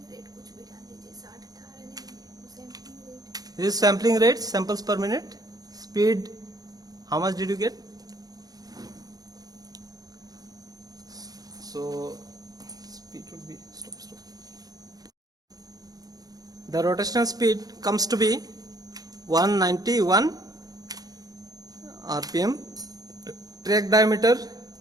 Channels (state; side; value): late; left; 0.18 ms